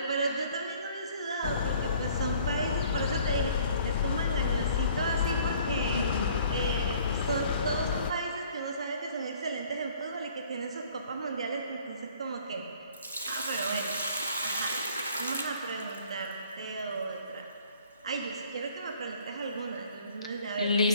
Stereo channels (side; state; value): both; inverted; correlation -0.56